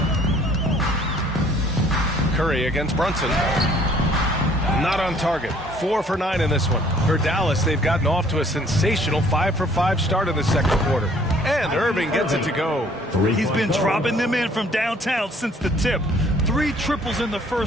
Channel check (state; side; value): normal; both; correlation 0.58